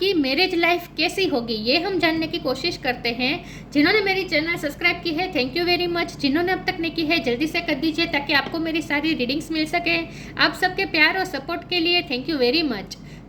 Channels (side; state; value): both; identical; correlation 1.00